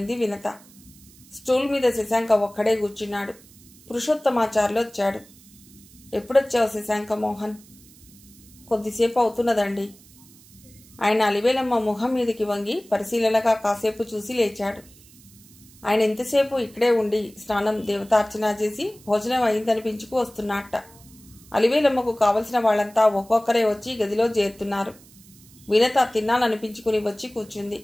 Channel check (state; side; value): noise; right; hiss, 24 dB below the sound